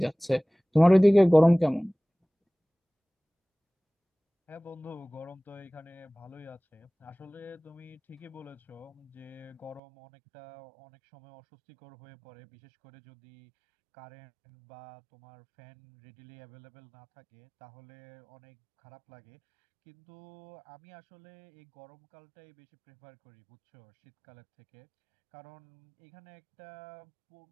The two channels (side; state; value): left; drops out; at 9.8 s